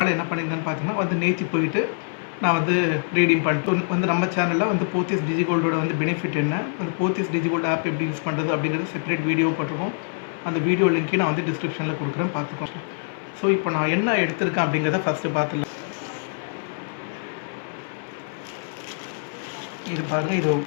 என்ன பண்ணியிருந்தேன்னு பார்த்தீங்கன்னா நேற்று போயிட்டு நான் ரீடீம் பண்ணிட்டு நம்ம சேனலில் போத்தீஸ் டிஜிகோல்டோட பெனிஃபிட் என்ன, போத்தீஸ் டிஜிகோல்டு ஆப் எப்படி யூஸ் பண்ணுறது அப்படிங்கிறது செப்பரேட் வீடியோ போட்டிருக்கோம். அந்த வீடியோ லிங்க்கே நான் டிஸ்கிரிப்ஷனில் கொடுக்குறேன், பார்த்துக்கலாம். ஸோ இப்போ நான் என்ன எடுத்திருக்கேன் அப்படிங்கிறத ஃபஸ்ட்டு பார்த்துக்கலாம். இது பாருங்கள், இது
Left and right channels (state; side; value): silent; right; 56 dB below the other